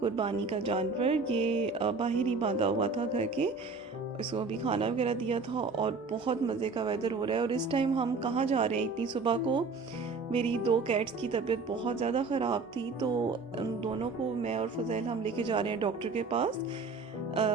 का जानवर। ये बाहर ही बांधा हुआ था घर के, इसको अभी खाना वगैरह दिया था और बहुत मज़े का वेदर हो रहा है। और इस टाइम हम कहाँ जा रहे हैं इतनी सुबह को? मेरी दो कैट्स की तबीयत बहुत ज़्यादा ख़राब थी, तो उन दोनों को मैं और फज़ैल हम लेके जा रहे हैं डॉक्टर के पास।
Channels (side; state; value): left; quieter; 4.3 dB